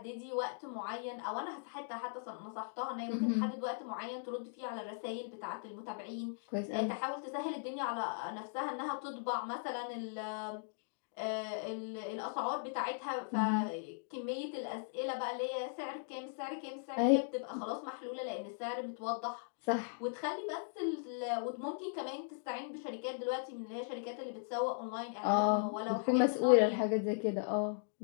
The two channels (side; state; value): right; silent; digital silence